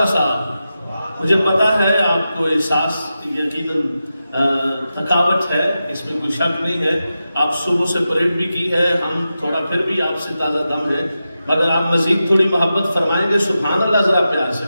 سا مجھے پتا ہے آپ کو احساس یقیناً تھکاوٹ ہے، اس میں کوئی شک نہیں ہے، آپ صبح سے پریڈ بھی کی ہے، ہم تھوڑا پھر بھی آپ سے تازہ دم ہے، مگر آپ مزید تھوڑی محبت فرمائیں گے سبحان اللہ ذرا پیار سے۔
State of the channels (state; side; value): inverted; both; correlation -0.91